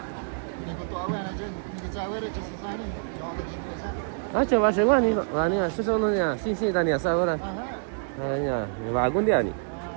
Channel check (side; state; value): left; silent; digital silence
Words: Ah, chaval, seguro ni no. Ah, ni, eso solo ni, sí, Dani, ¿sabes ahora? Ah, ya, ni va algún día ni.